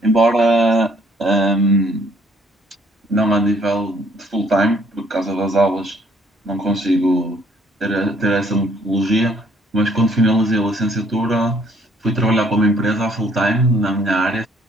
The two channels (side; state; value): both; normal; correlation 0.63